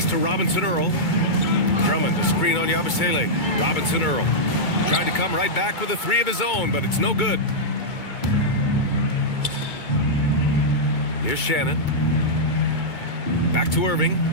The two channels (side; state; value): right; late; 2.2 ms